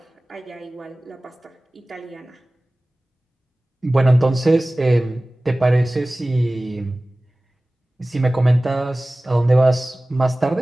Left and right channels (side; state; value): both; normal; correlation 0.98